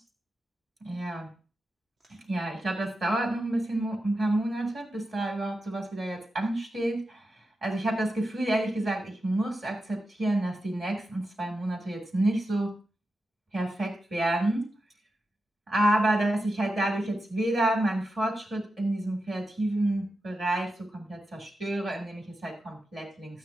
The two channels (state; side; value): normal; both; correlation 0.89